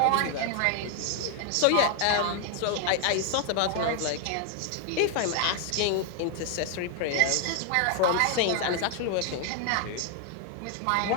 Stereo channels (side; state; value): both; different; correlation 0.00